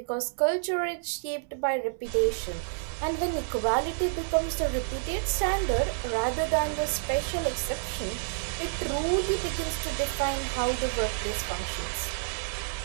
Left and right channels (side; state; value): left; silent; digital silence